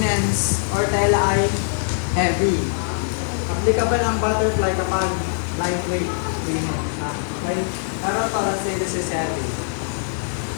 or tela ay heavy. Applicable ang butterfly kapag lightweight linen. Okay? Pero to, let's say this is heavy.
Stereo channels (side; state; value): right; silent; 64 dB below the other